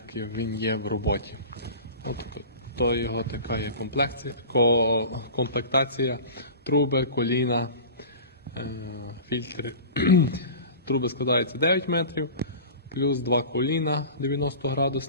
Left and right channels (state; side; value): inverted; both; correlation -0.35